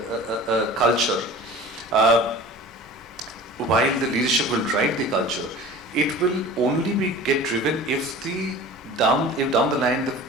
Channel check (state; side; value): normal; both; correlation 0.40